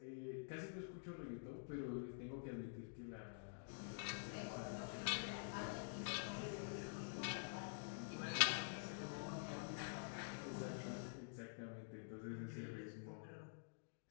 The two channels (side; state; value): right; silent; digital silence